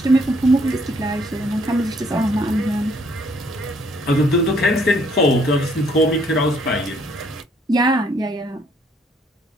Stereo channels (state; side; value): normal; both; correlation 0.66